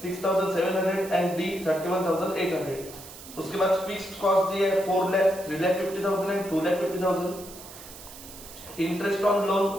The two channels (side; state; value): right; noise; hiss, 16 dB below the sound